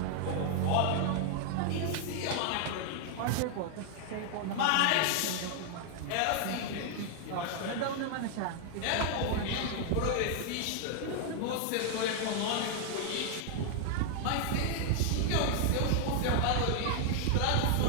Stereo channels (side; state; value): both; different; correlation 0.00